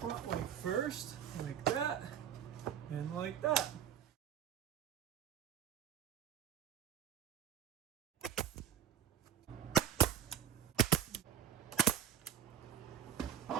way first, like that, and like that.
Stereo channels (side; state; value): left; quieter; 9.3 dB